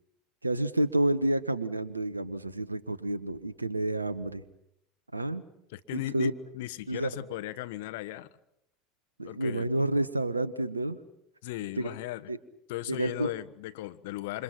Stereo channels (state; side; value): inverted; both; correlation -0.81